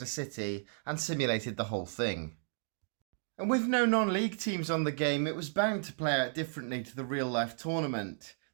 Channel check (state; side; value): silent; left; digital silence